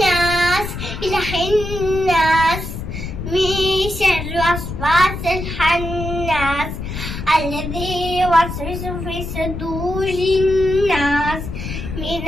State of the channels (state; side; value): noise; left; rumble, 7 dB below the sound